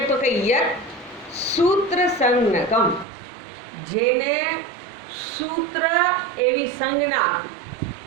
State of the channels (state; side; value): drops out; left; at 3.1 s